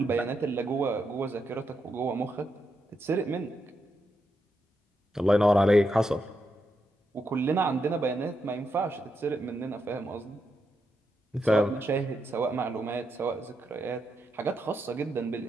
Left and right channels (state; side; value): normal; both; correlation 0.83